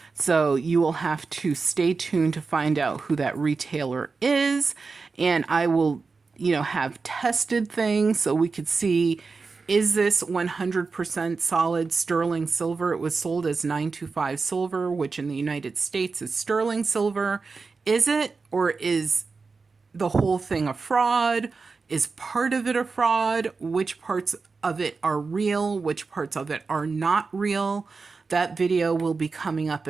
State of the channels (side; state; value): left; quieter; 4.4 dB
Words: So you will have to stay tuned to find out who that retailer is. And I will, have tested things so we could see, is this 100% solid sterling silver? It was sold as 925 silver, which in the United States is sterling silver. Is it, or is the whole thing a fraud? Is part of it a fraud? Which parts of it are real? Which parts of it are not real? That video will be coming up